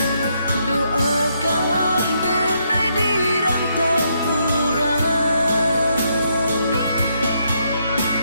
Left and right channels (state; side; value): inverted; both; correlation -0.76